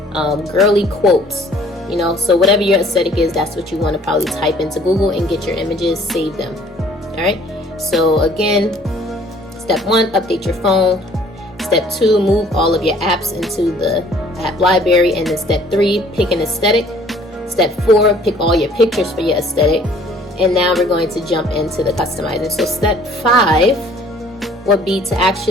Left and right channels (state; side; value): normal; both; correlation 0.56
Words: girly quotes, you know. So whatever your aesthetic is, that's what you want to probably type into Google and get your images, save them. All right. So again, step 1, update your phone. Step 2, move all of your apps into the app library. And then step 3, pick an aesthetic. Step 4, pick all your pictures for your aesthetic. And now we're going to jump into the customizing. So step 5 would be to